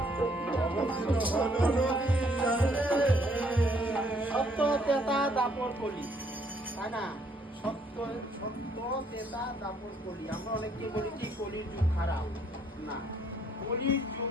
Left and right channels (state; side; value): normal; both; correlation 0.67